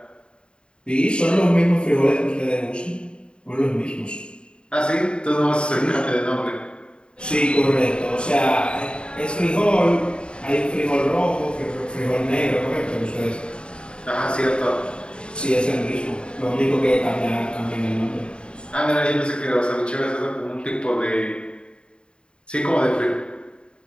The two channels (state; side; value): late; right; 0.053 ms